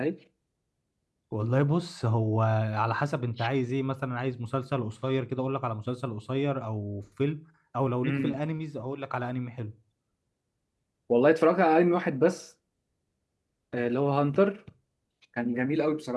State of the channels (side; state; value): both; identical; correlation 1.00